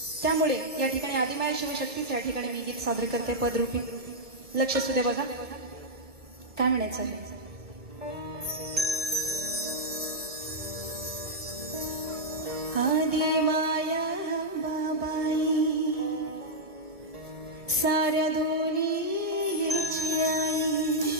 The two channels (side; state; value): left; late; 2.2 ms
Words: त्यामुळे या ठिकाणी आदिमाया शिवशक्तीच या ठिकाणी मी गीत सादर करते पदरूपी. लक्ष सुद्धा बघा काय म्हणायचं आहे. आदिमाया बाबाई साऱ्या दुनियेची आई,